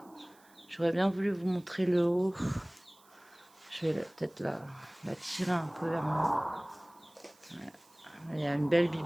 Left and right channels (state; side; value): noise; right; hiss, 29 dB below the sound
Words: J'aurais bien voulu vous montrer le haut. Je vais peut-être la tirer un peu vers moi. Ouais. Il y a une belle